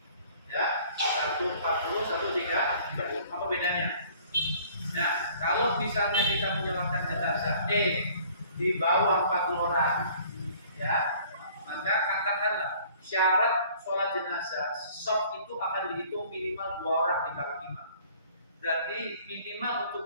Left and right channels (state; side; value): inverted; both; correlation -0.54